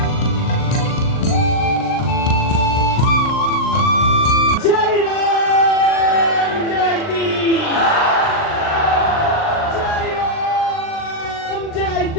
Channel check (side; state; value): right; late; 39 ms